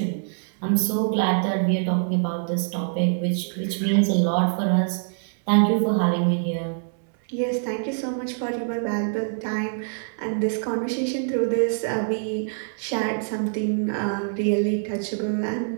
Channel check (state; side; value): silent; left; digital silence